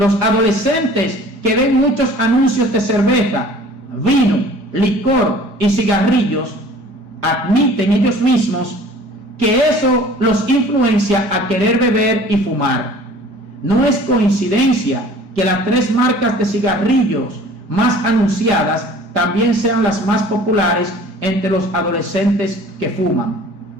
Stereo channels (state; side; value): late; left; 5.0 ms